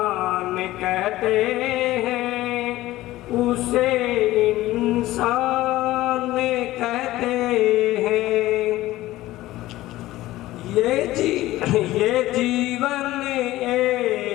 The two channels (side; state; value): right; quieter; 16.5 dB